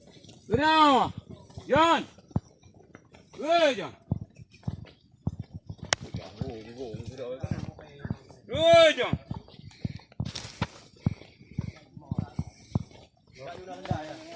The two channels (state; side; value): identical; both; correlation 1.00